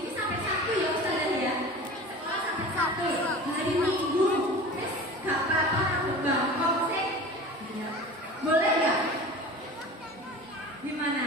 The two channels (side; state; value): both; normal; correlation 0.37